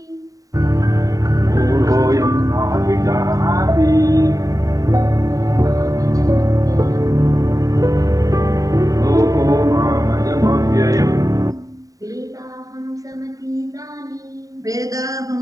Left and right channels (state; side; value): late; left; 0.17 ms